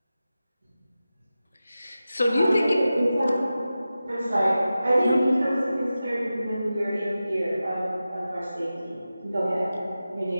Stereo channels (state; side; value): inverted; both; correlation -0.93